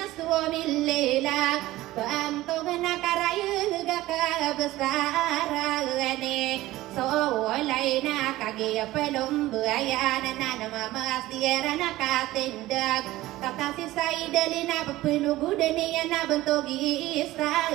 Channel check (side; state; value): left; quieter; 17.0 dB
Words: lela Bantu gana karaya gaka besarane so laina kage pelum buaya nana mama siera nakatindak kata si saidalina pepelu gudani na bentogi